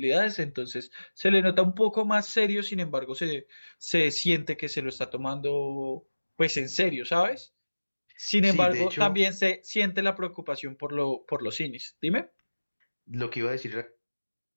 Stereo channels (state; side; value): inverted; both; correlation -1.00